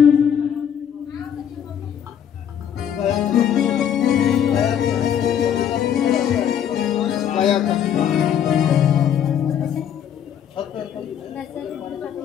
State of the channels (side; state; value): right; quieter; 9.0 dB